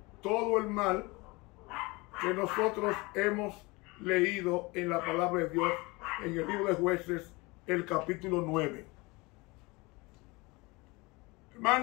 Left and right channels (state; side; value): quieter; right; 24.6 dB